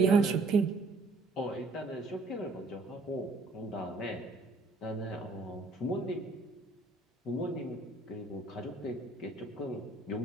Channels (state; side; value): quieter; left; 3.2 dB